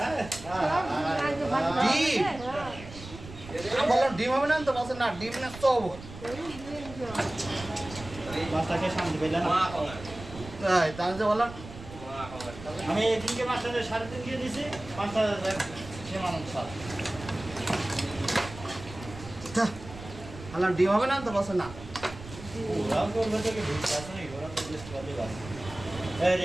বললাম ডিম হবে না তো বলছে না ডিম না তো মাছটাকে সামনে পেলেন তাই তাহলে যে বললাম আমি এদিনকে মাছটা 3.5 দিয়ে দিছি 5,000 সে মানুষ বললাম ডিম হবে না তো বলছে না ওরাও করবে তো কি ভুল আছে নাকি ওরা তো লিস্ট করে দিবা এই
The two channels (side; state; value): right; noise; rumble, 14 dB below the sound